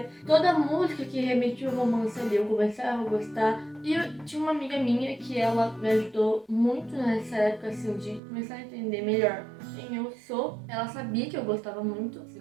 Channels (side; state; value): left; drops out; at 8.2 s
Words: Toda música que remetia ao romance ali, eu começava a gostar. E eu tinha uma amiga minha que ela me ajudou muito nessa época, assim, de começar a entender melhor quem eu sou. Ela sabia que eu gostava muito, assim